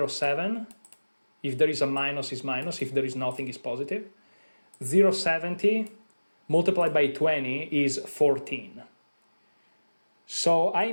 If there is a minus, it's minus. If there is nothing, it's positive. 0.70 multiplied by 20 is 14. So I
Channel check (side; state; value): both; inverted; correlation -1.00